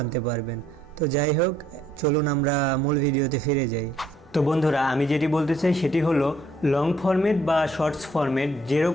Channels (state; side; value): normal; both; correlation 0.65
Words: পারবেন। তো যাই হোক, চলুন আমরা মূল ভিডিওতে ফিরে যাই। তো বন্ধুরা, আমি যেটি বলতে চাই সেটি হলো লং ফরম্যাট বা শর্টস ফরম্যাট